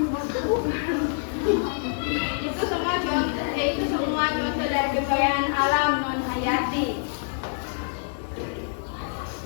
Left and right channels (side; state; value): right; silent; digital silence